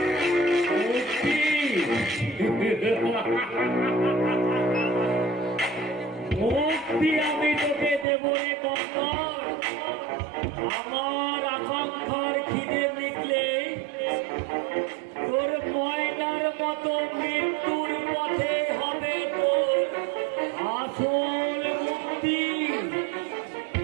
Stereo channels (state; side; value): drops out; left; at 8.1 s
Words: মুক্তি আমি তোকে দেব রে কঙ্কর। আমার আকাঙ্ক্ষার খিদে মিটলে তোর ময়নার মতো মৃত্যুর পথে হবে তোর আসল মুক্তি।